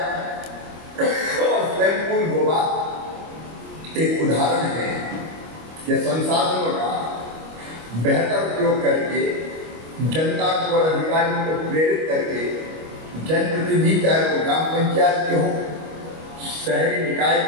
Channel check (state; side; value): late; left; 25 ms